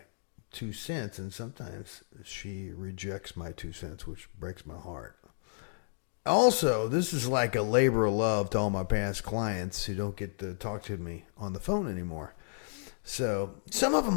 2 cents. And sometimes she rejects my 2 cents, which breaks my heart. Also, this is like a labor of love to all my past clients who don't get to talk to me on the phone anymore. So some of them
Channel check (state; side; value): silent; right; digital silence